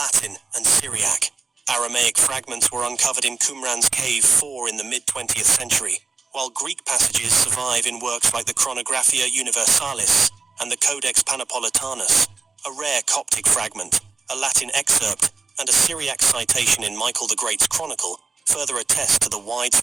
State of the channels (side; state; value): left; quieter; 4.4 dB